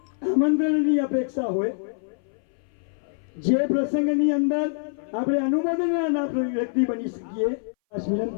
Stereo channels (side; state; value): right; silent; 59 dB below the other